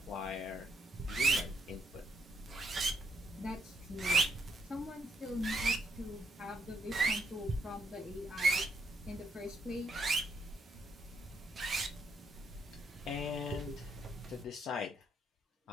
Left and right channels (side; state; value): both; normal; correlation 0.76